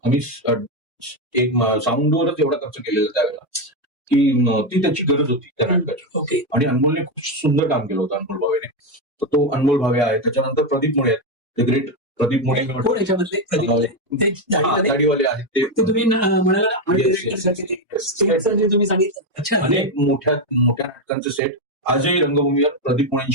आम्ही एक साऊंडवरच एवढा खर्च केलेला त्यावेळेला की ती त्याची गरज होती त्या नाटकाची. ओके. आणि अनमोलने खूप सुंदर काम केलं होतं अनमोल भावेने. तर तो अनमोल भावे आहे. त्याच्यानंतर प्रदीप मुळे आहेत, द ग्रेट प्रदीप मुळे. गाडीवाले आहेत ते तुम्ही म्हणाला, तुम्ही सांगितलं. अनेक मोठ्या नाटकांचे सेट आजही रंगभूमीवर प्रदीप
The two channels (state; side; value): normal; both; correlation 0.08